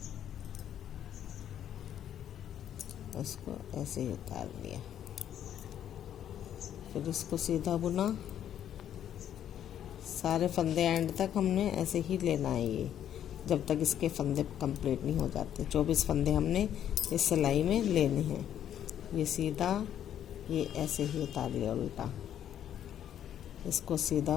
इसको ऐसे ही उतार लिया। फिर इसको सीधा बुना। सारे फंदे एंड तक हमने ऐसे ही लेना है, ये जब तक इसके फंदे कंप्लीट नहीं हो जाते। 24 फंदे हमने इस सिलाई में लेने हैं। ये सीधा, ये ऐसे ही उतार लिया उल्टा। इसको सीधा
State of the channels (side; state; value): right; quieter; 10.2 dB